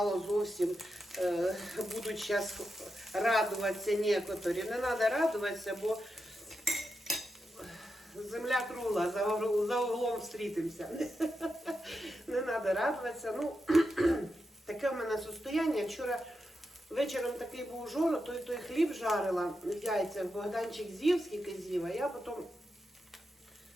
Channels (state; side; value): normal; both; correlation 0.87